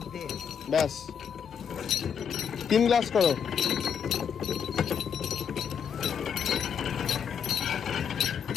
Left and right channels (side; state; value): right; quieter; 7.5 dB